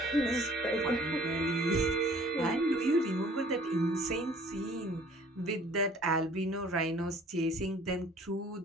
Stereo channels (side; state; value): both; normal; correlation 0.54